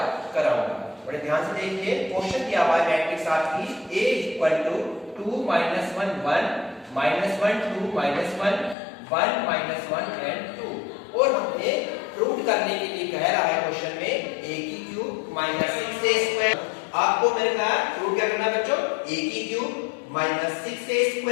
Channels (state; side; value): drops out; right; at 8.8 s